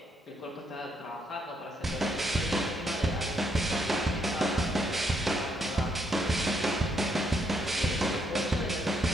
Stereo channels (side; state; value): both; normal; correlation 0.75